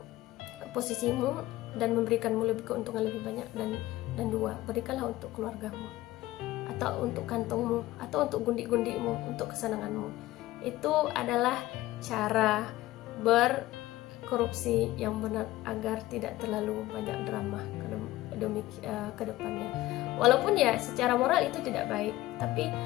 posisimu dan memberikanmu keuntungan lebih banyak. Dan 2 berikanlah untuk keluargamu, atau untuk kantongmu, atau untuk gundik-gundikmu, untuk kesenanganmu. Itu adalah cara berkorupsi yang benar, agar tidak terlalu banyak drama ke depannya. Walaupun ya secara moral itu tidak baik, tapi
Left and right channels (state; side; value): quieter; right; 16.9 dB